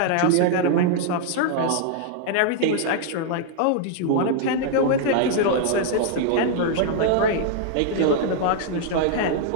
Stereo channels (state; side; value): different; both; correlation -0.01